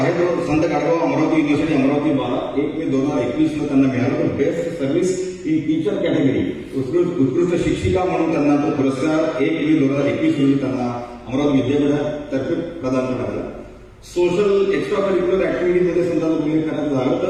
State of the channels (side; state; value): both; identical; correlation 1.00